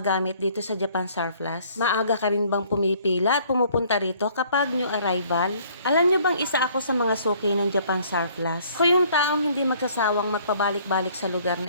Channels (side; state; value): both; inverted; correlation -0.59